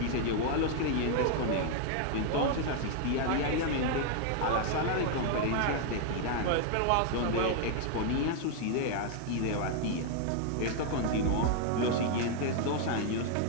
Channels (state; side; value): different; both; correlation 0.00